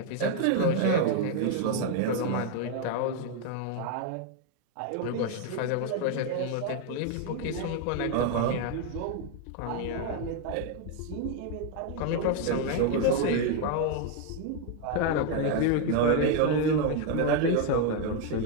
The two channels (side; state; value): both; different; correlation 0.01